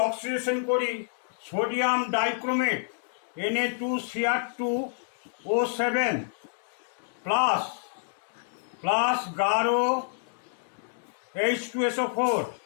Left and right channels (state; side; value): silent; right; digital silence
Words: অক্সিডেশন করি সোডিয়াম ডাইক্রোমেট Na2Cr2O7 প্লাস গাঢ় H2SO4